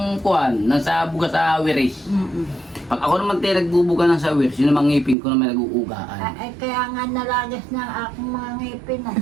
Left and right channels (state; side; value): drops out; left; at 5.2 s